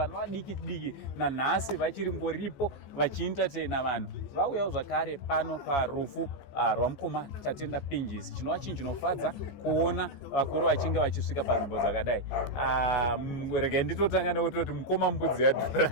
vadiki diki, nanhasi vachiri ngoripo vachientertaina vanhu. Vauyawo zvakare pano parufu rwamukoma Tatenda Pinjisi. Chinova chinhu chinofadza kuona vakuru vachinge vachisvika panzvimbo dzakadai. Regai nditotanga nekutoti mukoma mbudzi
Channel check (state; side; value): late; right; 14 ms